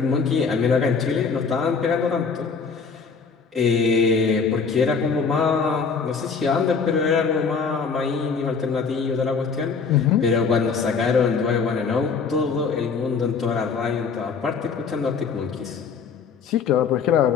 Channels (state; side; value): quieter; right; 5.5 dB